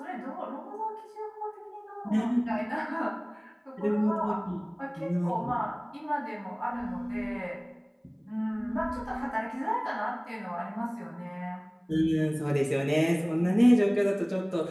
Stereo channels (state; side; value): identical; both; correlation 1.00